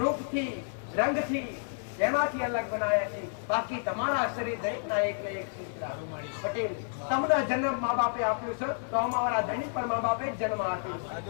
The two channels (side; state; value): right; silent; 58 dB below the other